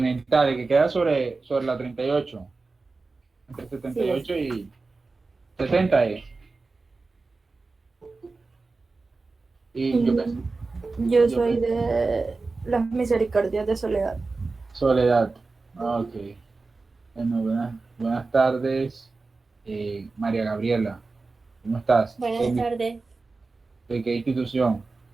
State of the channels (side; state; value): left; quieter; 3.8 dB